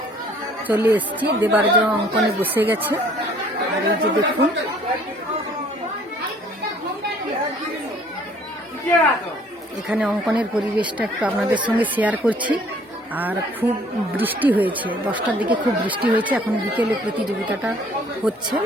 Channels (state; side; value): normal; both; correlation 0.58